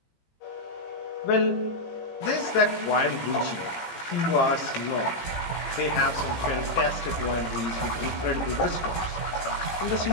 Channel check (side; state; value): right; late; 18 ms